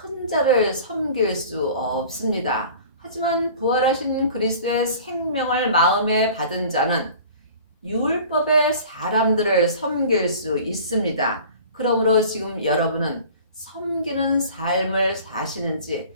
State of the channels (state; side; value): inverted; both; correlation -0.44